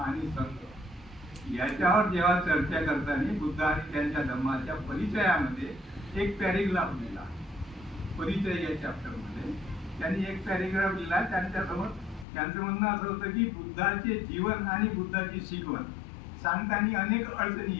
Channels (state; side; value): drops out; right; at 12.2 s